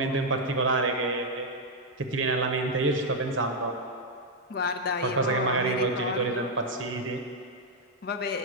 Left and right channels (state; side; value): normal; both; correlation -0.01